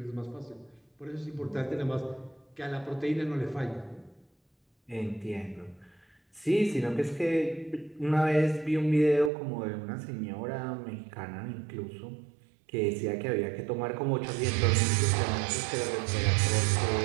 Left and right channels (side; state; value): left; drops out; at 9.3 s